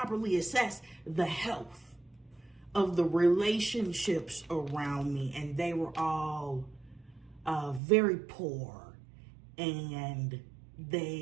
assess the health of the relationships around me, and they were all very poor, and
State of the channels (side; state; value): left; drops out; at 7.8 s